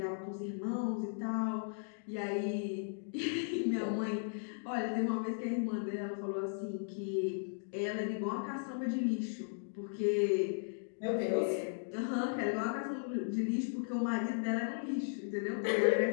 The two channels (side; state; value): right; silent; digital silence